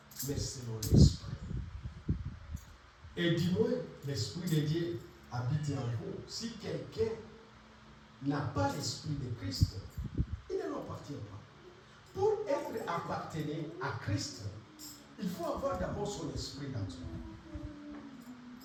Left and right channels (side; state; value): both; identical; correlation 1.00